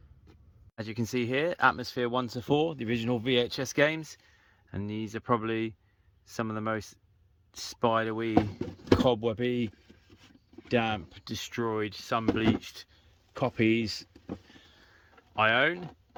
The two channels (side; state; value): both; identical; correlation 1.00